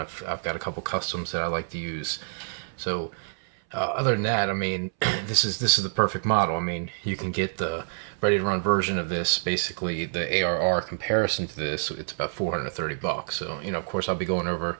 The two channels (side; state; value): left; silent; 60 dB below the other